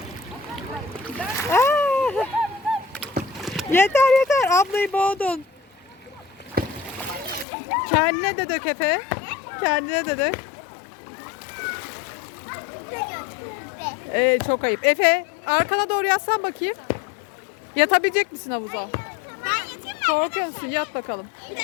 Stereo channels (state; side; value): drops out; right; at 7.5 s